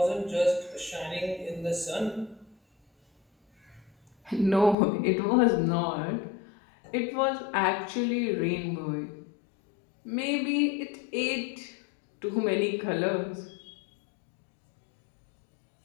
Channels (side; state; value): right; drops out; at 4.8 s